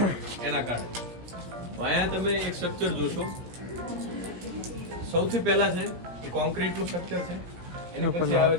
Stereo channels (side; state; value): left; late; 17 ms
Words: એના કારણે। અહીંયા તમે એક સ્ટ્રક્ચર જોશો, સૌથી પહેલા છે એ કોન્ક્રીટનું સ્ટ્રક્ચર છે, એની પછી આવે